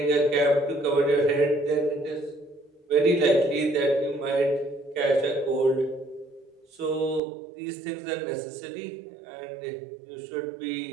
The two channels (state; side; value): drops out; left; at 7.2 s